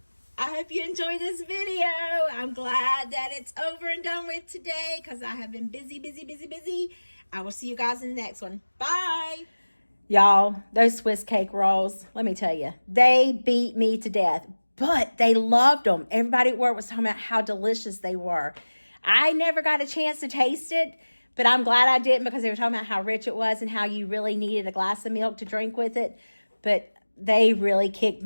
I hope you enjoyed this video. I'm glad that it's over and done with today because I have been busy, busy, busy, busy. I will see you guys in the next one. Bye. Y'all, those Swiss cake rolls, let me tell you, they beat me to death, but they loved them. Everybody at work was talking about how delicious they were. I never got a chance to taste it, but I'm glad I didn't because they were talking about how rich it was and how you really needed a glass of milk to drink with it. But they really kicked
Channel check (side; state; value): both; inverted; correlation -1.00